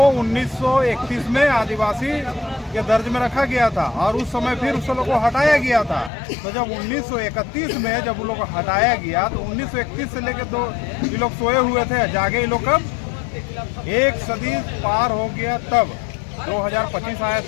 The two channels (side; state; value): right; drops out; at 6.1 s